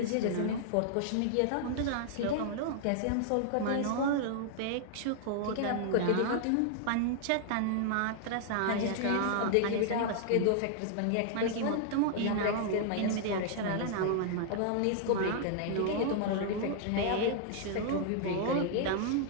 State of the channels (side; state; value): both; different; correlation -0.01